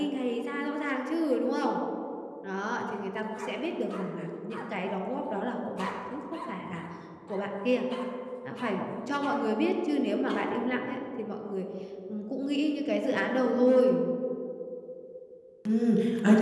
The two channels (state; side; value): identical; both; correlation 1.00